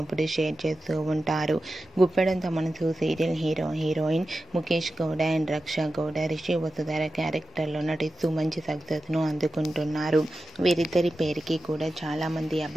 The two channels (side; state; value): both; normal; correlation 0.92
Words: షేర్ చేస్తూ ఉంటారు. Guppedantha Manasu serial heroine Mukesh Gowda and Raksha Gowda Rishi Vasudhara క్యారెక్టర్లో నటిస్తూ మంచి సక్సెస్ను అందుకుంటున్నారు. వీరిద్దరి పేరుకి కూడా చాలామంది